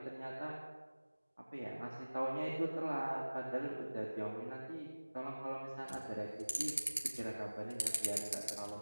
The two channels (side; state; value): both; inverted; correlation -1.00